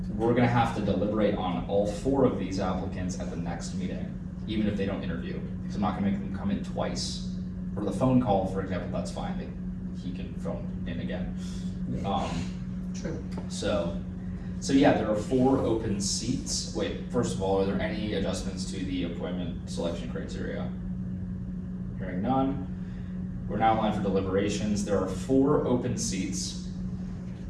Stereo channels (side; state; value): both; identical; correlation 1.00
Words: We're gonna have to deliberate on all 4 of these applicants at the next meeting, even if they don't interview, because I'm not gonna make them come in twice. For the phone call, for example, that's fine, he can phone in again. True. So yeah, there are 4 open seats. Wait, first of all, are there any adjustments to the appointment selection criteria? Hearing none. We're now in line for deliberations. There are 4 open seats.